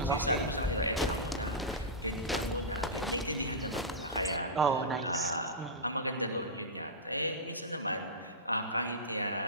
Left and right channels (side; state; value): both; normal; correlation -0.15